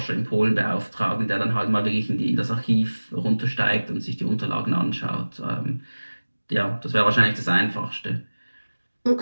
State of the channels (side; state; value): both; inverted; correlation -1.00